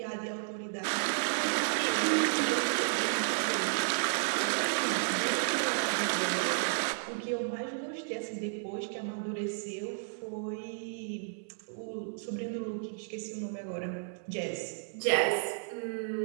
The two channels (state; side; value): silent; left; 56 dB below the other